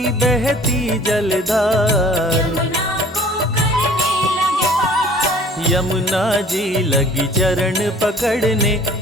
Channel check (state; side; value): normal; both; correlation 0.51